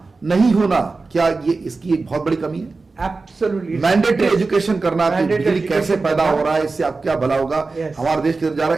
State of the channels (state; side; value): quieter; left; 3.9 dB